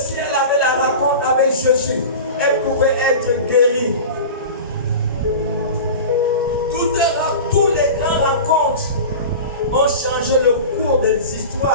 elle avait la rencontre avec Jésus, elle pouvait être guérie. Toutes les grandes rencontres ont changé le cours des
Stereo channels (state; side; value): inverted; both; correlation -0.32